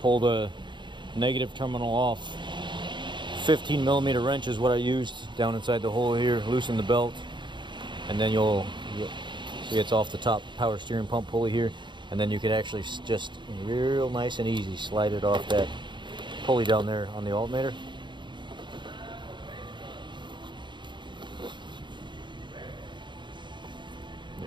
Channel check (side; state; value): left; late; 0.23 ms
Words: pull the negative terminal off. 15mm wrench is what I used down inside the hole here. Loosen the belt, and then you'll see it's off the top power steering pump pulley here, and then you can actually just real nice and easy slide it off that pulley down there on the alternator.